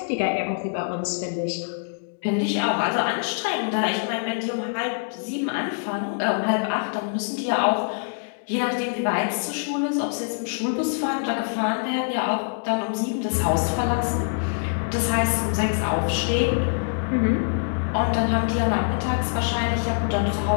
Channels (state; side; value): silent; right; digital silence